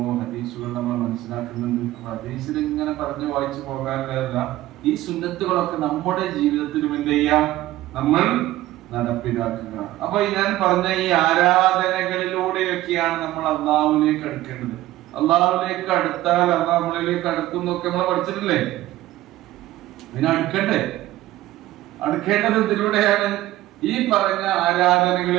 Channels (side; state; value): left; quieter; 15.7 dB